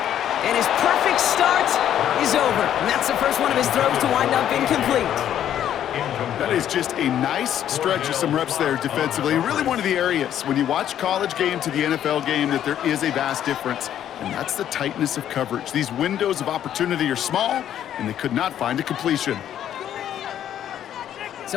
And his perfect start is over. And that's the first one of his throws to wind up incomplete. That is just a nice stretch of some reps there defensively. And really one of the areas, when you watch college game to the NFL game, that there is a vast difference. And that's the tightness of coverage. These windows of opportunity are small, and they could not find a completion.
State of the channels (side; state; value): right; quieter; 10.6 dB